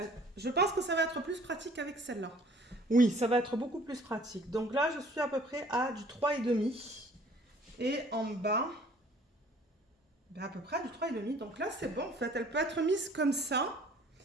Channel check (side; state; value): both; normal; correlation 0.54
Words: être plus pratique avec celle-là. Oui, ça va être beaucoup plus pratique. Donc là, je suis à peu près à du 3,5. Et en bas, ben à peu près à du 3,5. Donc là, c'est bon en fait. Elle peut être mise comme ça.